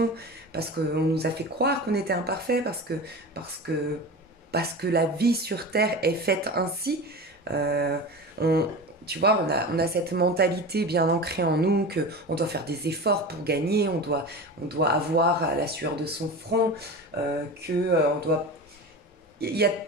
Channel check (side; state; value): both; normal; correlation 0.29